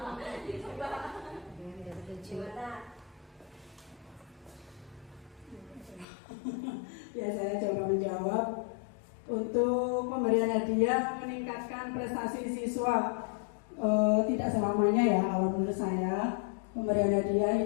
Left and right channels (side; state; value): right; drops out; at 6.1 s